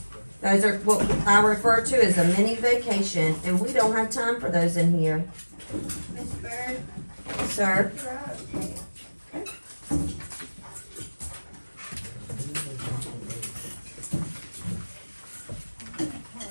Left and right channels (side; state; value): both; inverted; correlation -1.00